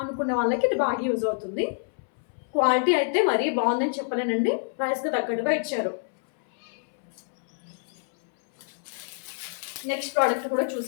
అనుకునే వాళ్ళకి ఇది బాగా యూజ్ అవుతుంది. క్వాలిటీ అయితే మరీ బాగుందని చెప్పలేనండి, ప్రైస్కి తగ్గట్టుగా ఇచ్చారు. నెక్స్ట్ ప్రోడక్ట్ కూడా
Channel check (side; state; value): right; silent; 60 dB below the other